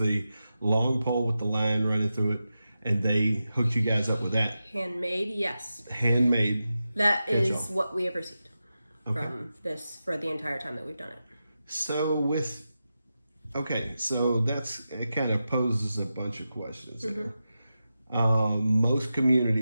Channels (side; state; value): both; inverted; correlation -0.91